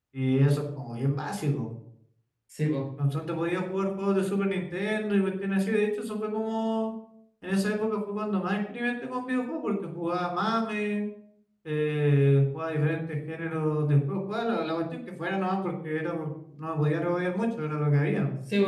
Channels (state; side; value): identical; both; correlation 1.00